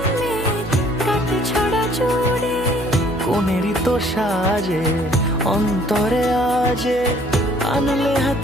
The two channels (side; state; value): right; noise; hum, 15 dB below the sound